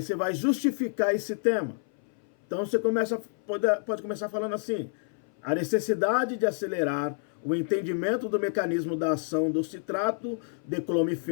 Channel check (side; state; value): right; silent; 58 dB below the other